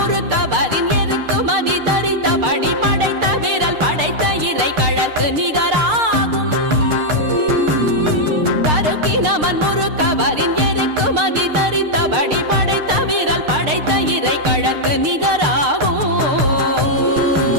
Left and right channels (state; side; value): late; left; 6.6 ms